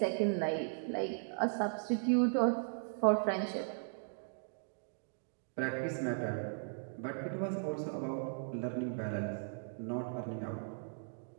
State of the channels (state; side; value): silent; left; digital silence